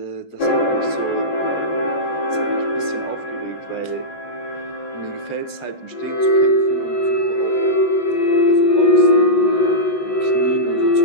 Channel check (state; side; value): late; right; 14 ms